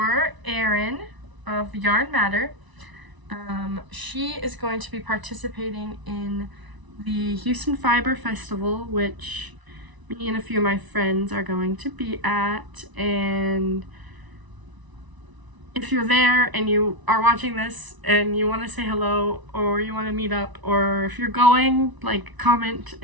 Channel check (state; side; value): late; left; 1.0 ms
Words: Erin of Yarn Matter. She is going to be participating in the Houston Fiber Festival, which me and a few of my friends are going to be at. And if you're there and you are watching this and you want to say hello, or you want to meet up, or if you're going, like, comment